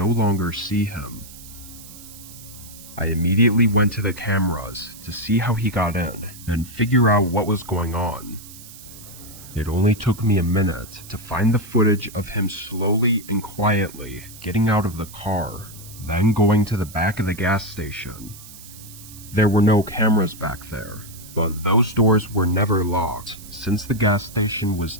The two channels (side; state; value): right; noise; hiss, 17 dB below the sound